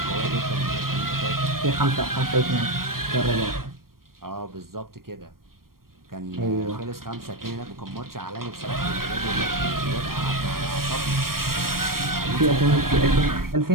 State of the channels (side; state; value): left; late; 0.92 ms